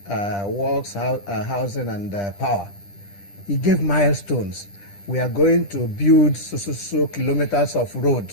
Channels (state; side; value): late; right; 10 ms